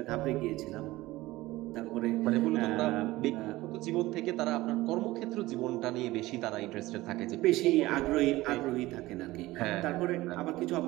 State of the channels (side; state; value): left; quieter; 18.3 dB